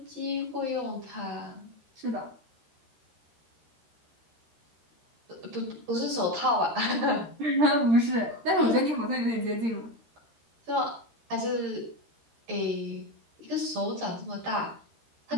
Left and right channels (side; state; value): left; late; 13 ms